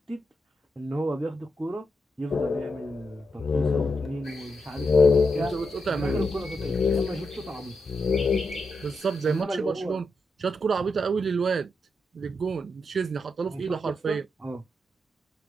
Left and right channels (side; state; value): both; normal; correlation 0.84